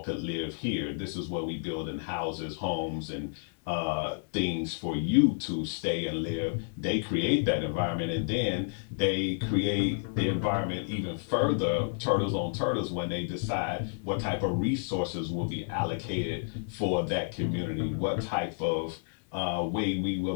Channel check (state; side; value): silent; right; 58 dB below the other